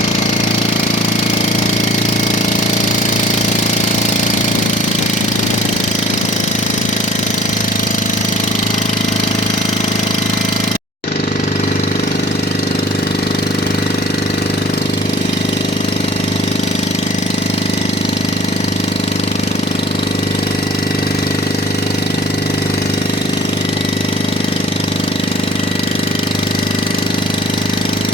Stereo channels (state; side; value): normal; both; correlation 0.51